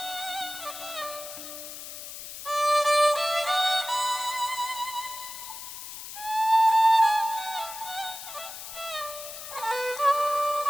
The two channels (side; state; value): left; noise; hiss, 10 dB below the sound